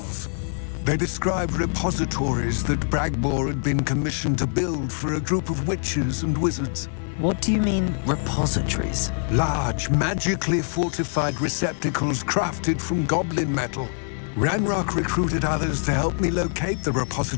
They described repositories that Bragbor had been commissioned to build for a group of witches and wizards. What do you mean, repositories? Large, magically fortified receptacles crafted from goblin metal. Ranrock recruited others to help me locate the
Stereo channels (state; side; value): silent; right; digital silence